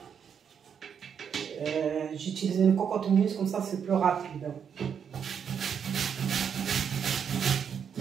J'utilise une cocotte minute, comme ça, c'est plus rapide.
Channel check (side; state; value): left; quieter; 7.5 dB